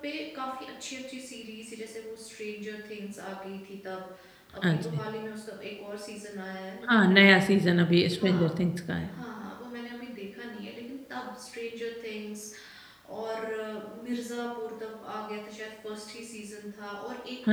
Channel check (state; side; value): identical; both; correlation 1.00